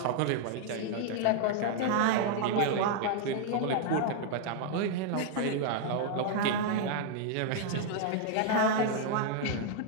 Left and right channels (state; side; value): different; both; correlation 0.00